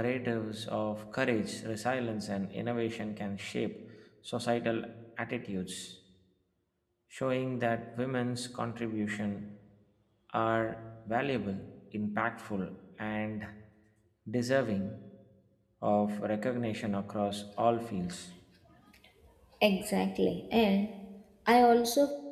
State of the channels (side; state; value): both; identical; correlation 1.00